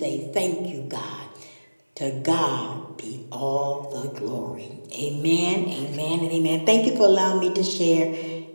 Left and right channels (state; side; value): inverted; both; correlation -1.00